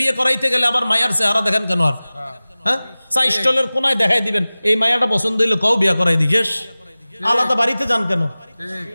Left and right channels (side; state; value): both; inverted; correlation -0.98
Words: করাইতে গেলে আবার মায়ার চেহারা দেখেন কেন? আর হ্যাঁ, চা স্টলের কোনায় দেখাই দিবেন এই মায়াটা পছন্দ হইলে কও বিয়ে করাই দিয়েস, আলাদা বাড়িতে যান কেন?